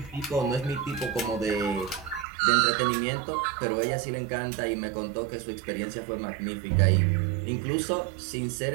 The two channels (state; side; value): drops out; left; at 2.2 s